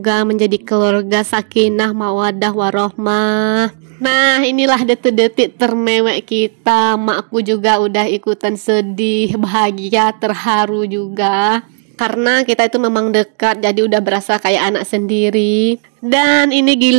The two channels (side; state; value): left; silent; digital silence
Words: menjadi keluarga sakinah mawaddah warohmah. Nah inilah detik-detik termewek kita. Makku juga udah ikutan sedih, bahagia, terharu juga. Karena kita itu memang dekat, jadi udah berasa kayak anak sendiri. Dan ini